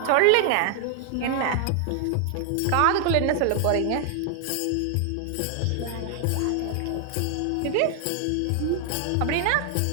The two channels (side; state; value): both; different; correlation 0.00